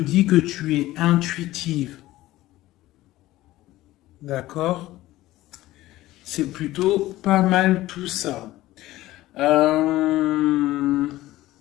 que tu es intuitive. D'accord? C'est plutôt pas mal tout ça.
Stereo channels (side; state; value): right; quieter; 16.5 dB